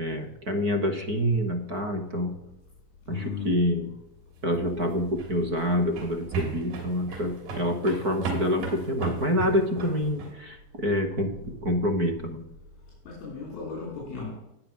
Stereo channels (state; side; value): late; left; 4.6 ms